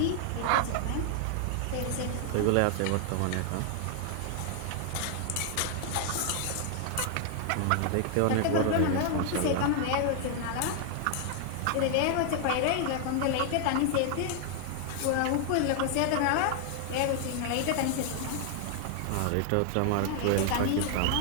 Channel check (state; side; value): different; both; correlation 0.00